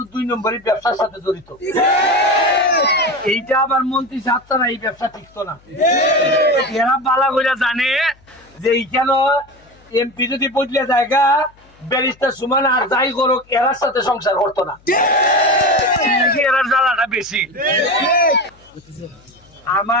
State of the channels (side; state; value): left; noise; hum, 30 dB below the sound